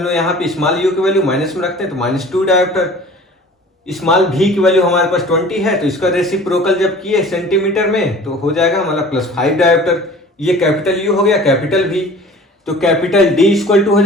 लोग यहाँ पे स्मॉल u की वैल्यू माइनस में रखते हैं, तो -2 डायोप्टर। स्मॉल v की वैल्यू हमारे पास 20 है, तो इसका रेसिप्रोकल जब किए सेंटीमीटर में तो हो जाएगा हमारा +5 डायोप्टर। ये कैपिटल U हो गया, कैपिटल V। तो कैपिटल D इक्वल टू हो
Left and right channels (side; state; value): both; normal; correlation 0.45